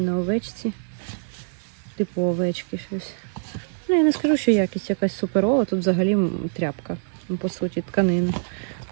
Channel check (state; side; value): silent; left; digital silence